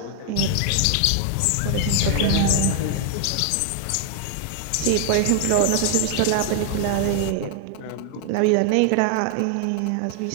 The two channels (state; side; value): different; both; correlation 0.00